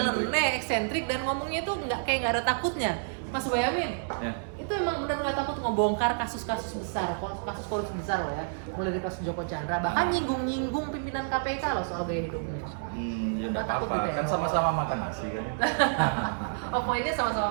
eksentrik, dan ngomongnya tuh nggak ada takutnya. Mas Boyamin, ya. Itu emang benar nggak takut ngebongkar kasus-kasus besar, kasus korupsi besar loh ya, mulai dari kasus Joko Chandra, bahkan nyinggung pimpinan KPK loh soal gaya hidupnya. Ya nggak apa-apa, gitu ya? Kan sama-sama makan nasi kan. Oh, poinnya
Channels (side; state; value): left; silent; 58 dB below the other